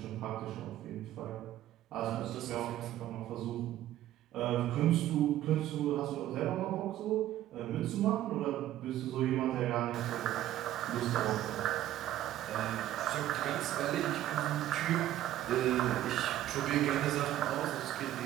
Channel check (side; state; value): left; quieter; 13.3 dB